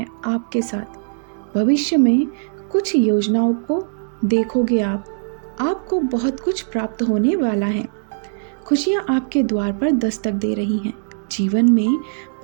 आपके साथ। भविष्य में कुछ योजनाओं को देखोगे आप। आपको बहुत कुछ प्राप्त होने वाला है। खुशियाँ आपके द्वार पर दस्तक दे रही हैं। जीवन में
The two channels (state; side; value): silent; left; 65 dB below the other